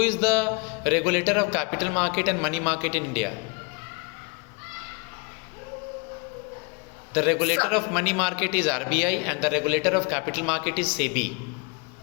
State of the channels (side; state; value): right; quieter; 32.7 dB